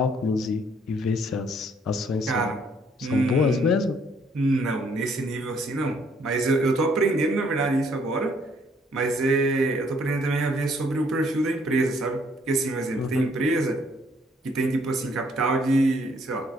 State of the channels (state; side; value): normal; both; correlation 0.66